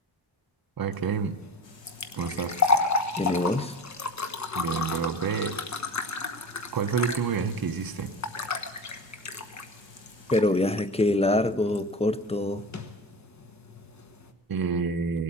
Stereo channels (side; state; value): both; normal; correlation 0.30